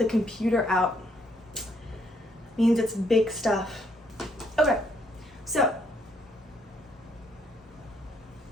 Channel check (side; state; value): both; normal; correlation 0.70